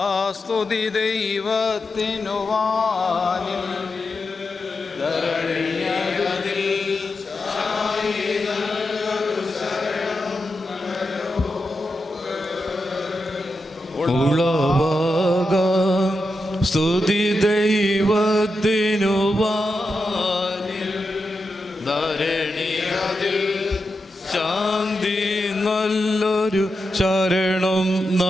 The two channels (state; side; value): normal; both; correlation 0.88